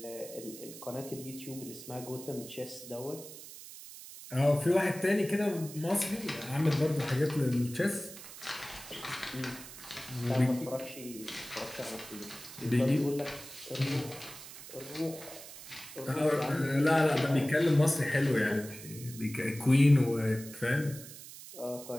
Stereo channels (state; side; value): noise; right; hiss, 14 dB below the sound